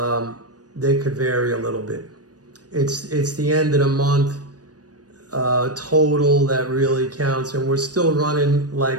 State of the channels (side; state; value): left; late; 0.68 ms